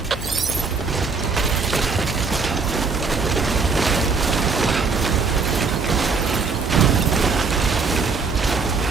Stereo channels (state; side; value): quieter; left; 4.7 dB